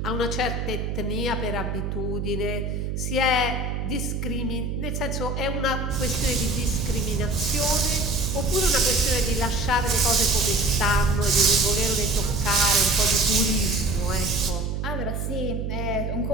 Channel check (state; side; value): noise; right; hum, 3 dB below the sound